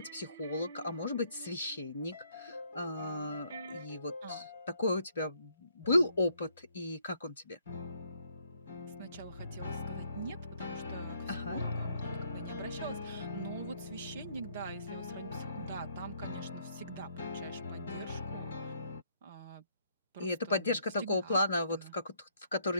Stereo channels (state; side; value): inverted; both; correlation -0.69